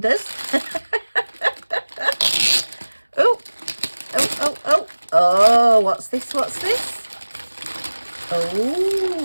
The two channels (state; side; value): inverted; both; correlation -1.00